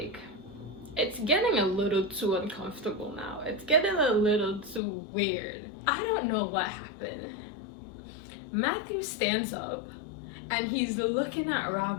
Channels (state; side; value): drops out; right; at 4.8 s